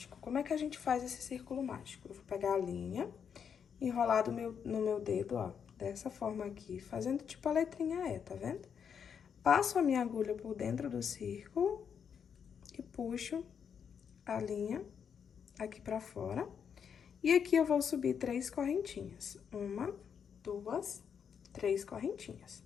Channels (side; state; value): right; quieter; 7.3 dB